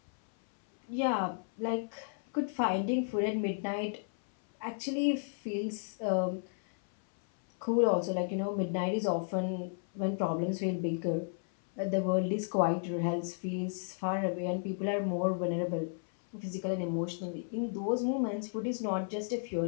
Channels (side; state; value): right; silent; 56 dB below the other